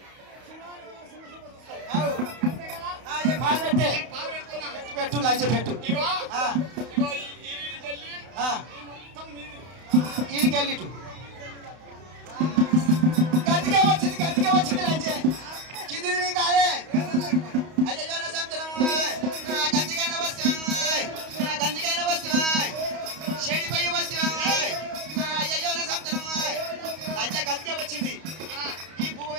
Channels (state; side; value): late; left; 31 ms